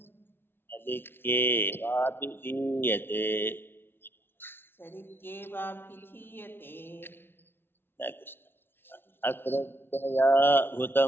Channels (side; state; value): right; late; 0.11 ms